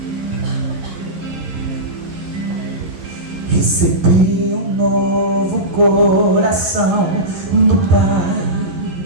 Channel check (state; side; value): late; left; 11 ms